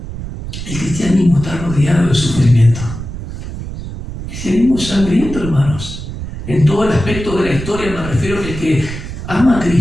El cristianismo está rodeado de sufrimiento. El cristianismo es sangriento, hermanos. En todo el aspecto de la historia me refiero a que el que ama a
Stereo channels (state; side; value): noise; right; rumble, 9 dB below the sound